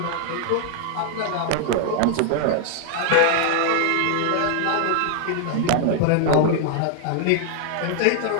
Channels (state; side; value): different; both; correlation 0.00